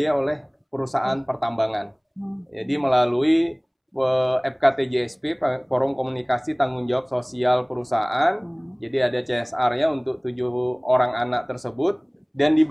oleh perusahaan pertambangan. Jadi melalui FKTJSP, Forum Komunikasi Tanggung Jawab Sosial Perusahaan. Jadi ada CSR-nya untuk 7 orang anak tersebut dan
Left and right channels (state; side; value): identical; both; correlation 1.00